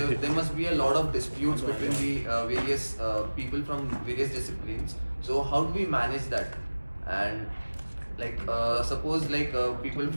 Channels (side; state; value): both; inverted; correlation -1.00